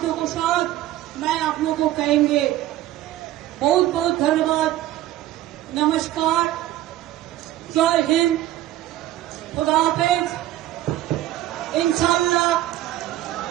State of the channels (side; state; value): left; quieter; 14.3 dB